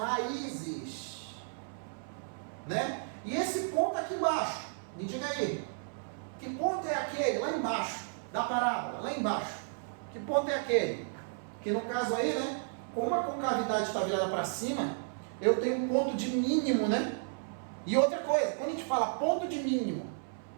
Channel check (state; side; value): silent; left; 56 dB below the other